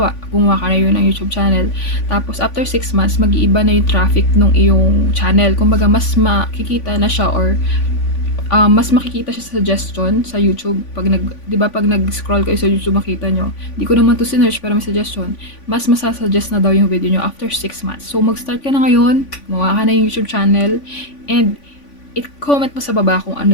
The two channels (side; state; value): right; late; 3.5 ms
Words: gumawa ka na yun ng YouTube channel, tapos after 6 months, mag-iiba na yung traffic ng iyong channel. Kumbaga, mas makikita na siya, or mas makikita siya sa suggestion sa YouTube. Pag pag nag-scroll kayo sa YouTube, makita nyo. Di ko naman to sinearch, pero may suggestion. Mas masasuggest na daw yung video nyo after 6 months. So, mag-start ka na ngayon, gumawa ka na yung YouTube channel, and i-comment mo sa baba kung